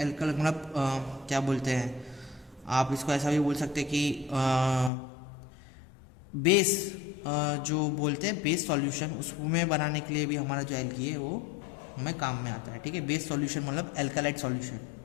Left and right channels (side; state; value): right; drops out; at 4.9 s